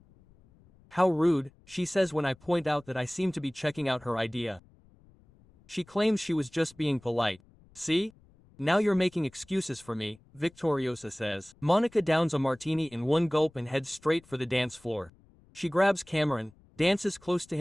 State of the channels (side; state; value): left; noise; rumble, 28 dB below the sound